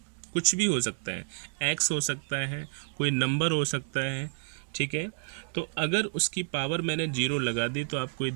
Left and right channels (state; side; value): silent; left; digital silence